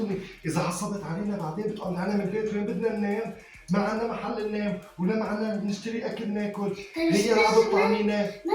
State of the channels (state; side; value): identical; both; correlation 1.00